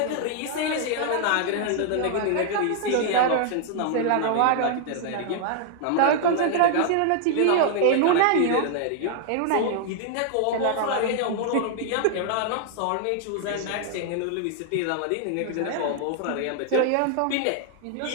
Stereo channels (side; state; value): both; different; correlation 0.00